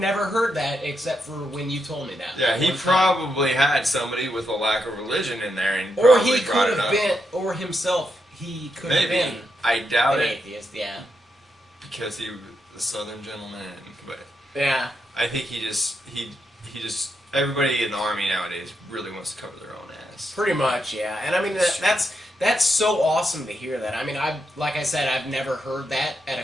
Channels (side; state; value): both; normal; correlation 0.83